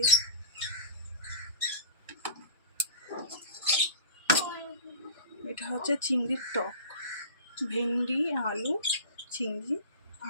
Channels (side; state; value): both; inverted; correlation -0.36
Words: এটা হচ্ছে চিংড়ির টক, ভেন্ডি আলু চিংড়ি